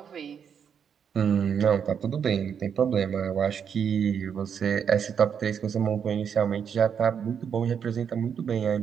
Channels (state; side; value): quieter; left; 7.5 dB